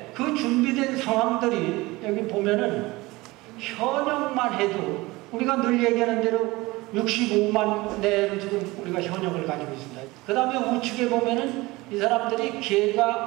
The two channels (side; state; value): left; quieter; 21.3 dB